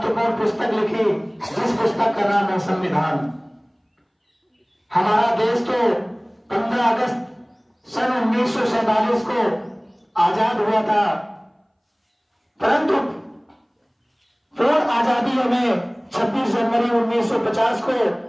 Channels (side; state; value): both; identical; correlation 1.00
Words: पुस्तक लिखी, जिस पुस्तक का नाम है संविधान। हमारा देश तो 15 अगस्त सन 1947 को आजाद हुआ था, परंतु पूर्ण आजादी हमें 26 जनवरी 1950 को